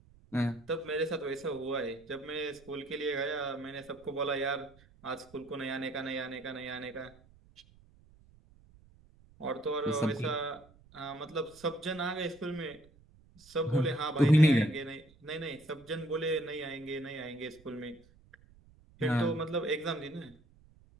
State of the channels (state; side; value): noise; right; rumble, 26 dB below the sound